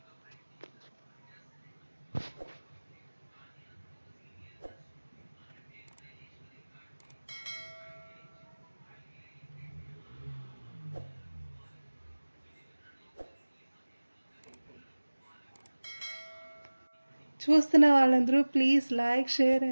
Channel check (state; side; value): inverted; both; correlation -1.00